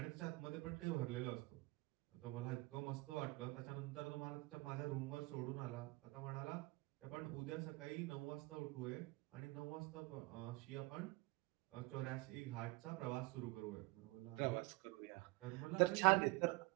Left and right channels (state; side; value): quieter; left; 23.6 dB